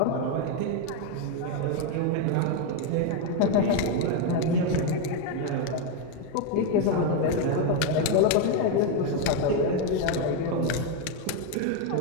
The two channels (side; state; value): both; different; correlation 0.02